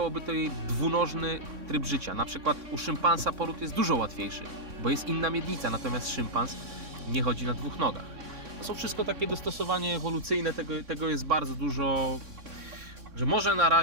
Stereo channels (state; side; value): late; left; 3.6 ms